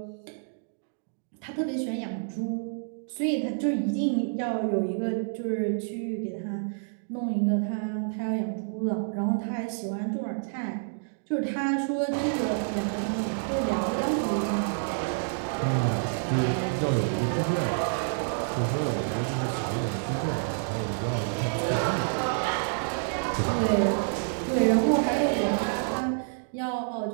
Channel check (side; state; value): left; silent; digital silence